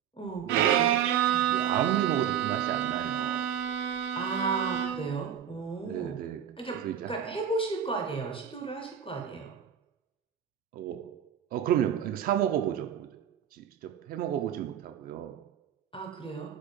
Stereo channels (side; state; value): left; quieter; 8.9 dB